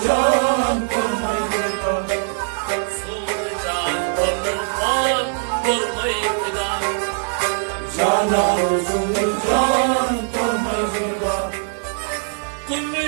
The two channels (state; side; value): silent; left; digital silence